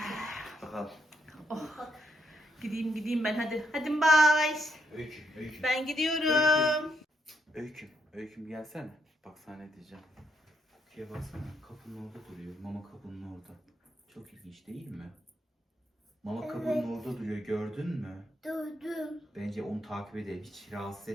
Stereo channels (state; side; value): normal; both; correlation 0.76